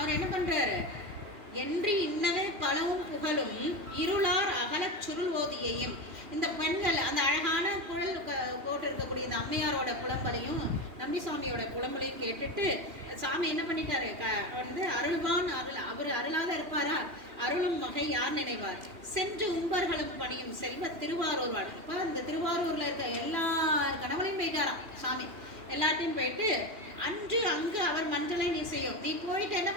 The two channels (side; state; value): left; late; 2.9 ms